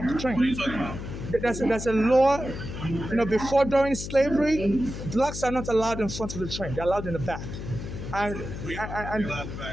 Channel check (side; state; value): left; noise; hum, 8 dB below the sound